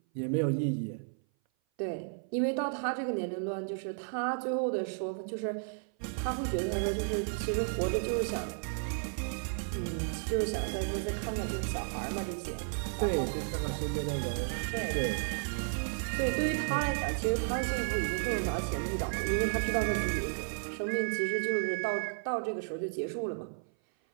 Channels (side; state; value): left; silent; 56 dB below the other